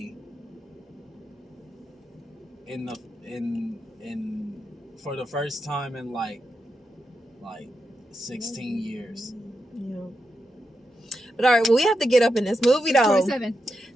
for the first time in like 16 years. Yeah. But all right, well, we have to get up in this movie though. 27.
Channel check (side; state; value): both; normal; correlation 0.87